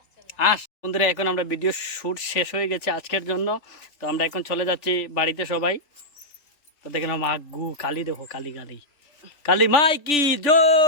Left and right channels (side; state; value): right; late; 3.4 ms